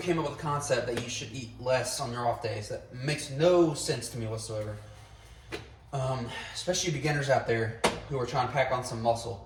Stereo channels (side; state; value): both; identical; correlation 1.00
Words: up with the concept that you should eat less on your off days. That makes no sense to me whatsoever. Especially beginners out there who are trying to pack on some